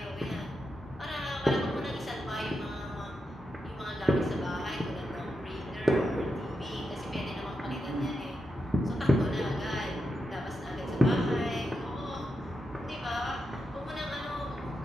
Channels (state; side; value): normal; both; correlation 0.86